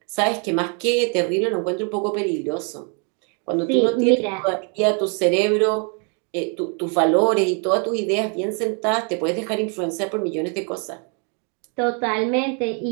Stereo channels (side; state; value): left; quieter; 38.6 dB